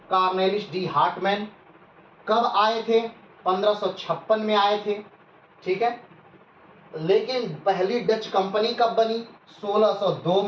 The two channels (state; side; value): identical; both; correlation 1.00